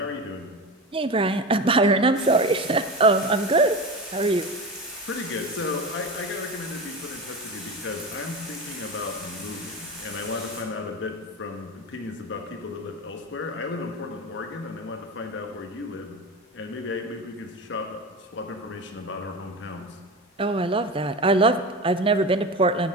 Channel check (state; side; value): normal; both; correlation 0.26